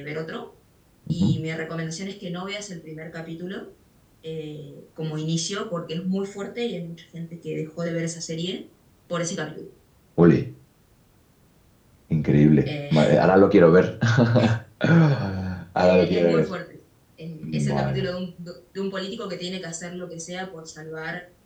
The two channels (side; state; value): both; identical; correlation 1.00